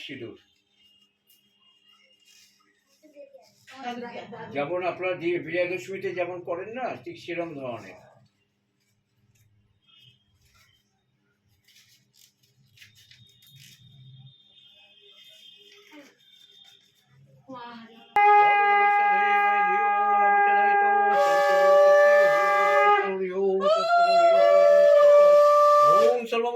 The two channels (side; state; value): both; identical; correlation 1.00